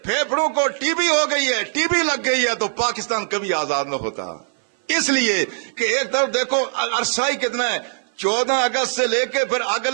پھیپھڑوں کو ٹی بی ہو گئی ہے، ٹی بی لگ گئی ہے، تو پاکستان کبھی آزاد نہ ہوتا. اس لیے کہ ایک طرف دیکھو عرصہ ہی کتنا ہے، 14 اگست سے لے کے پھر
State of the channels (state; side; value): silent; left; 58 dB below the other